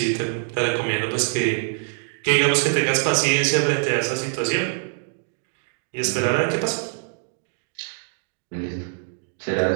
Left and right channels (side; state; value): left; silent; 59 dB below the other